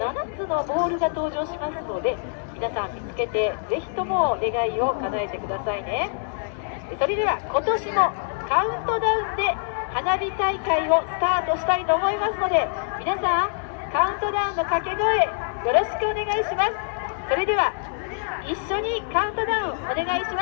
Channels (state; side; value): silent; right; 62 dB below the other